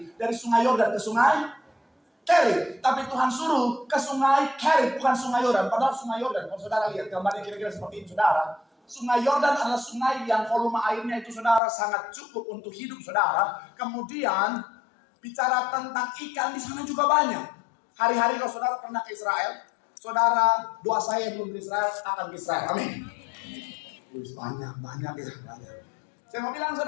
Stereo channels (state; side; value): drops out; right; at 11.6 s